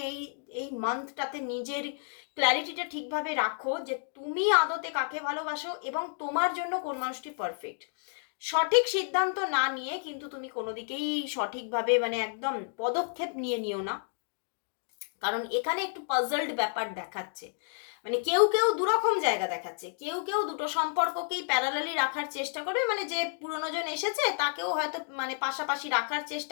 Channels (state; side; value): silent; right; 57 dB below the other